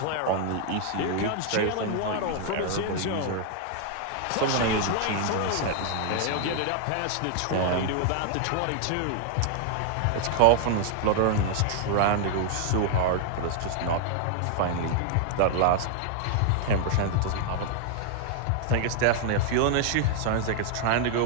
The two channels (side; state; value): both; different; correlation 0.00